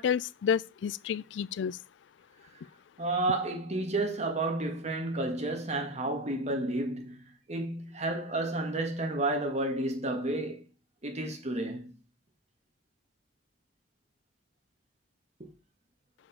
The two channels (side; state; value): both; normal; correlation 0.19